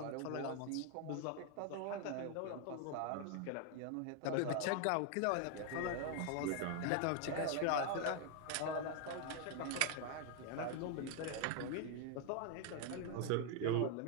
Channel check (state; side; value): different; both; correlation 0.01